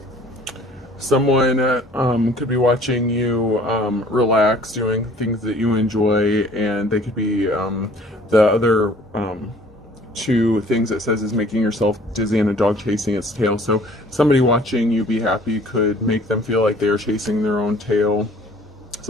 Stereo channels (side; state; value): both; normal; correlation 0.53